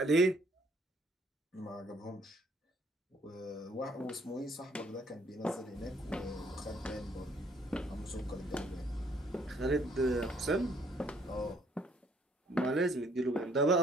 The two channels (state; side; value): normal; both; correlation 0.64